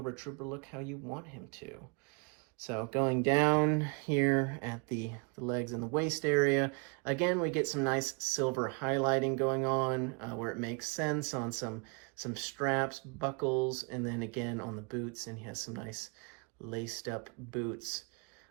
Trooper look how you want him to. So going down here at the legs and the waist area, again, we get some nice silver highlighting going on where it makes sense on some straps, buckles, and then again on the boots, and he has some nice laced up boots.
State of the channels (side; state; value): left; quieter; 33.2 dB